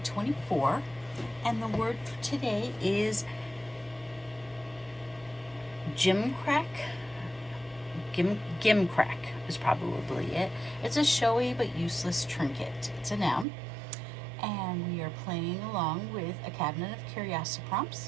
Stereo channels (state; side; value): drops out; left; at 13.5 s